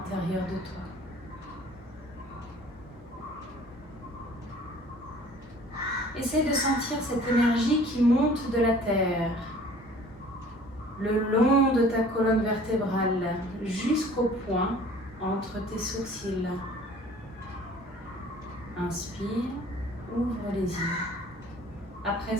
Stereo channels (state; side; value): normal; both; correlation 0.50